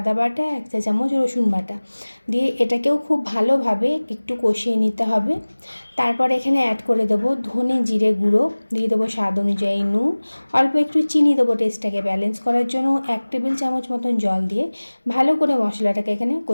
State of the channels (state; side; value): inverted; both; correlation -1.00